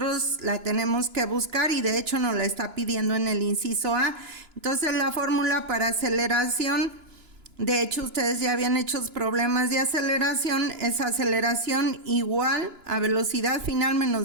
la tenemos que buscar y de hecho nos la está pidiendo en el inciso A. Entonces la fórmula para aceleración, de hecho ustedes ya habían hecho problemas de aceleración, es aceleración igual a velocidad final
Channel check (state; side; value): late; left; 2.9 ms